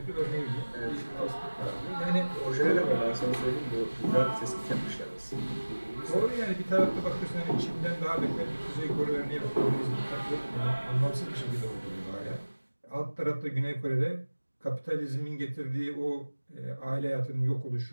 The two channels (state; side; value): inverted; both; correlation -1.00